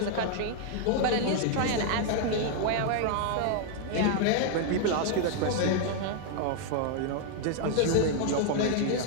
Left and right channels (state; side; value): different; both; correlation 0.00